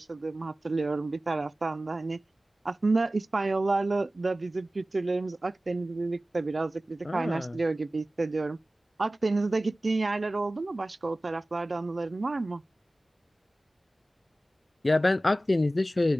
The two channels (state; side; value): normal; both; correlation 0.97